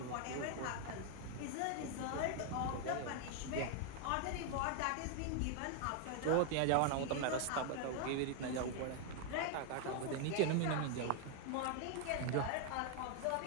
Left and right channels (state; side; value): different; both; correlation 0.00